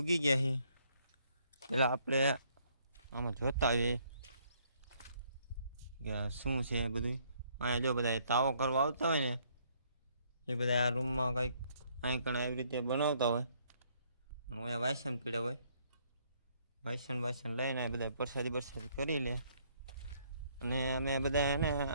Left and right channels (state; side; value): inverted; both; correlation -0.68